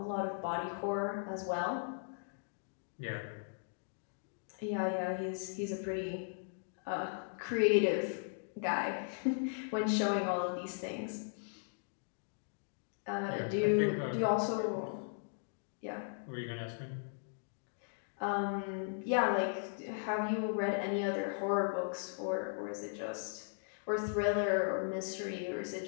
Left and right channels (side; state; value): right; silent; digital silence